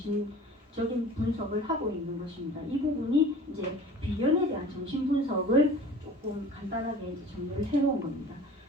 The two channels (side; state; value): both; normal; correlation 0.42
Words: 분석을 하고 있는 것입니다. 이 부분이 이제 비견에 대한 정신 분석을 조금 간단하게 이제 정리를 해놓은 겁니다.